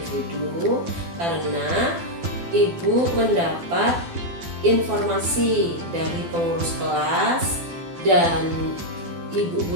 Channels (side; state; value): left; late; 12 ms